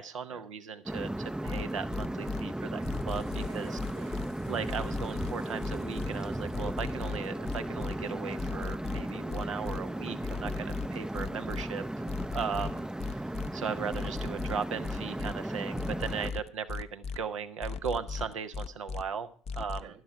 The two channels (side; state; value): both; normal; correlation 0.75